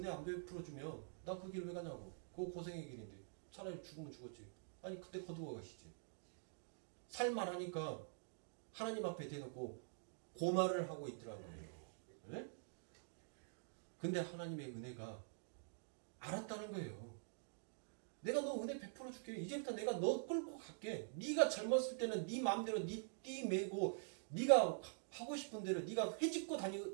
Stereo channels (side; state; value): left; silent; digital silence